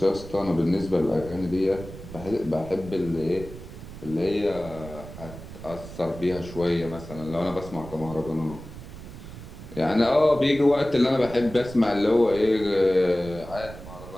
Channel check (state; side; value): noise; right; rumble, 14 dB below the sound